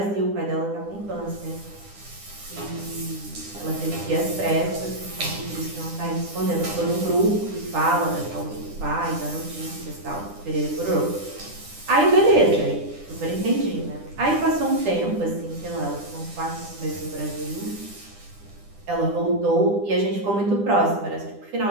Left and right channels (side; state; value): left; late; 10 ms